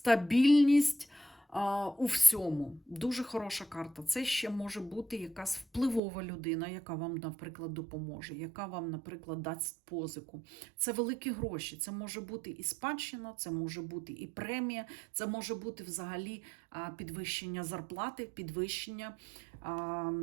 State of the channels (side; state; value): left; drops out; at 6.0 s